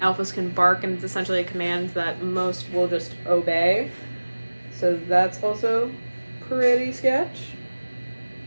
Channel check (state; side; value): inverted; both; correlation -1.00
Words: alphas can bark, and it's essentially a command that most will just obey, so that's also pretty sketch.